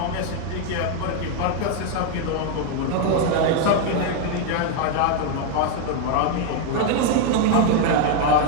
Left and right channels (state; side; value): different; both; correlation 0.01